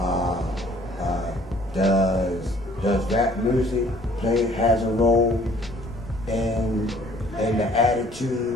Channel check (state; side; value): normal; both; correlation 0.57